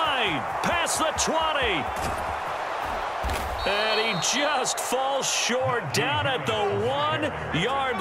Past the 20. And he just falls short down at the 1-yard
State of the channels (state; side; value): identical; both; correlation 1.00